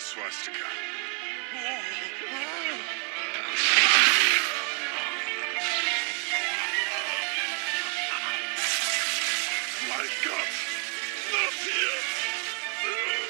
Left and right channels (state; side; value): quieter; left; 39.8 dB